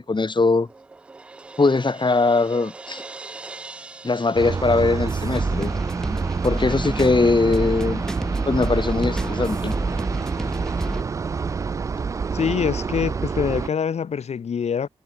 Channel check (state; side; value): normal; both; correlation 0.74